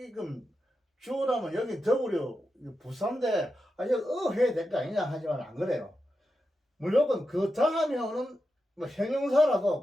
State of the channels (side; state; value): both; normal; correlation 0.89